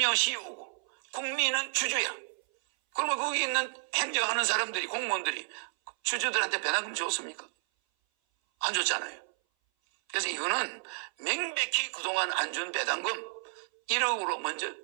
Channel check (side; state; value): left; silent; 57 dB below the other